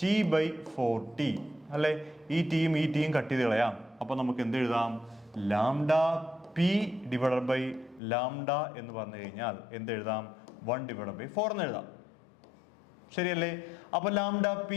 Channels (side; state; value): right; drops out; at 8.0 s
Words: T/4T അല്ലേ? ഈ ടീം കട്ട് ചെയ്ത് കളയാം. അപ്പൊ നമുക്ക് എന്ത് എഴുതാം? Lambda P divided by lambda എന്ന് പറഞ്ഞു കഴിഞ്ഞാൽ എന്ത് എഴുതാം? 1 ഡിവൈഡഡ് ബൈ 4 എന്ന് എഴുതാം. ശരിയല്ലേ? അപ്പൊ lambda P